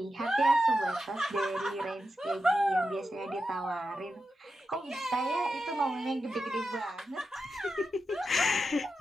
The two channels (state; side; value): normal; both; correlation 0.89